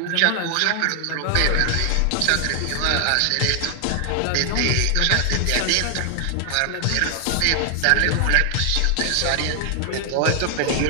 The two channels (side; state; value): both; different; correlation 0.00